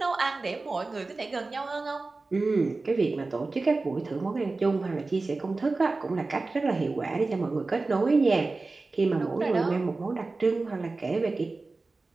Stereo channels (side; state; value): left; quieter; 3.6 dB